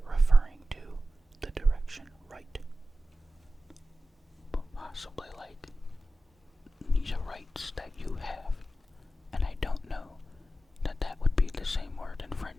referring to the direction right, but possibly like these are rights that you have, and I don't know that would be the same word in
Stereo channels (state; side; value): normal; both; correlation 0.93